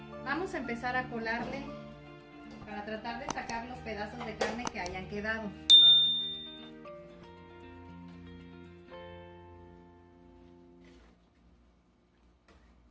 Vamos a empezar a colarle para tratar de sacar los pedazos de carne que hayan quedado.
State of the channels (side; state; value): both; identical; correlation 1.00